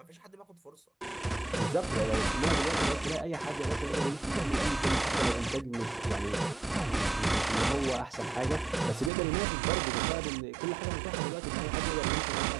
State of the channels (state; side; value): drops out; left; at 9.1 s